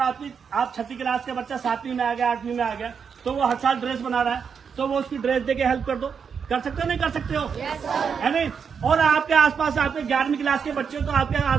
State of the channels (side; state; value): left; quieter; 6.5 dB